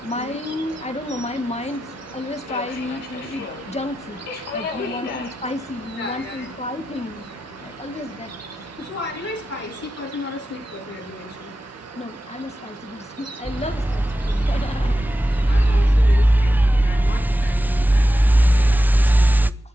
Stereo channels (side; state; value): both; normal; correlation 0.91